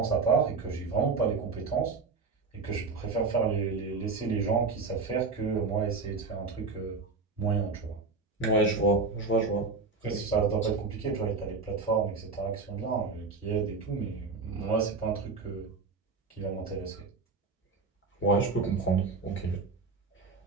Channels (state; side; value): quieter; left; 4.2 dB